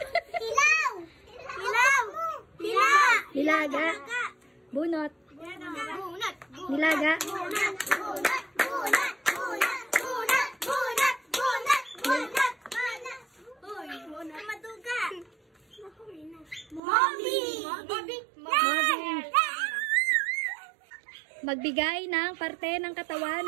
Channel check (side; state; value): left; drops out; at 16.8 s